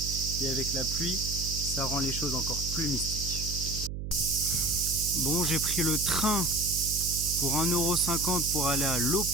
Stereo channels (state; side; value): noise; right; hum, 6 dB below the sound